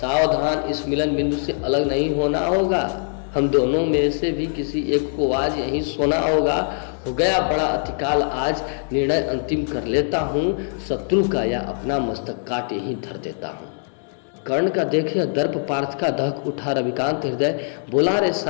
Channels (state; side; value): silent; right; digital silence